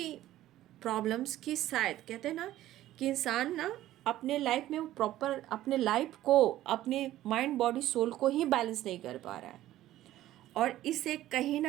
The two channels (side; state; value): left; quieter; 14.2 dB